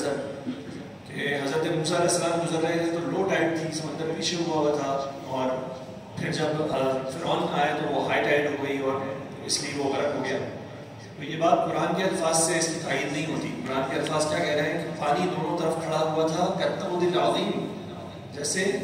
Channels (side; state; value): both; identical; correlation 1.00